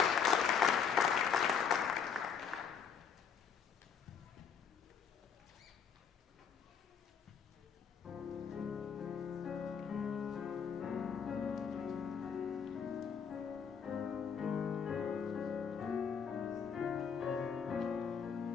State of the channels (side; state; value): right; quieter; 6.8 dB